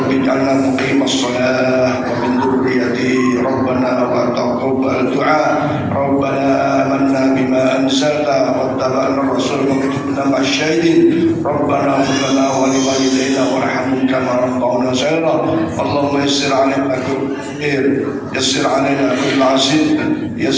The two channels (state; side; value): identical; both; correlation 1.00